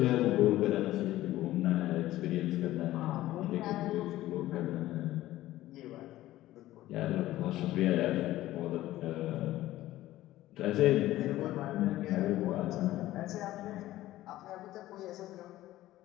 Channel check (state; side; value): quieter; right; 15.4 dB